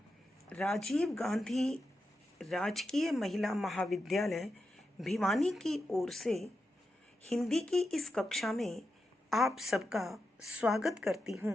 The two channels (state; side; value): normal; both; correlation 0.88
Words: राजीव गांधी राजकीय महिला महाविद्यालय भिवानी की ओर से हिंदी की इस कक्षा में आप सबका स्वागत करती हूँ,